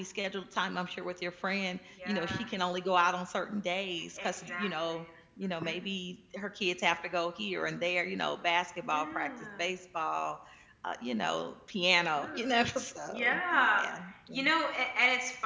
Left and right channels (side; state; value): both; identical; correlation 1.00